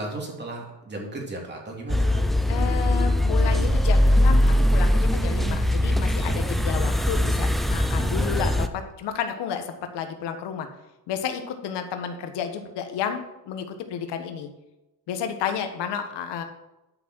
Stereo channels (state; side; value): normal; both; correlation 0.82